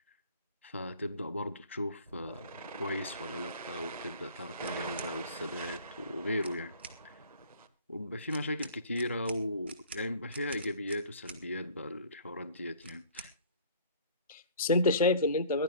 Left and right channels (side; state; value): both; inverted; correlation -0.49